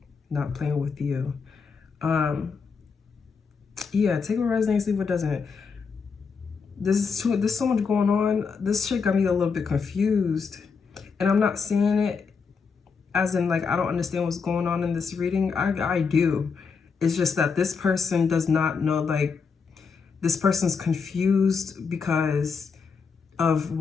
Not playing with you. Yeah, take what resonates, leave what doesn't. There's so much going on. This shit got me a little bit confused. And I'm not saying it as in, like, I don't understand what's going on in this reading. I do. It's just that this person does not know, like, this person's confused because of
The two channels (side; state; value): right; quieter; 5.4 dB